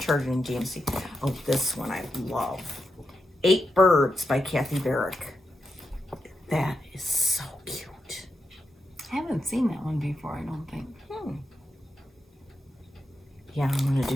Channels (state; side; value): normal; both; correlation 0.86